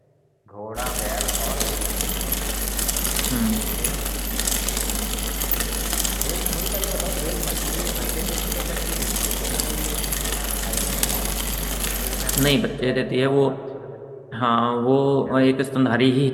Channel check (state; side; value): identical; both; correlation 1.00